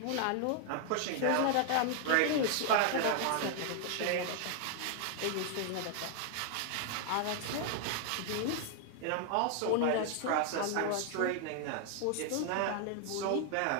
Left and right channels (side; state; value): both; different; correlation 0.00